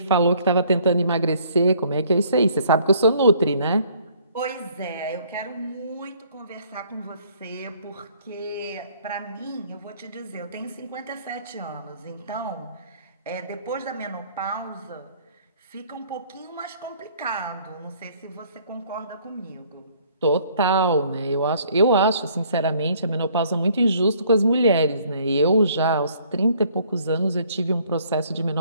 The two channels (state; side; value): inverted; both; correlation -0.60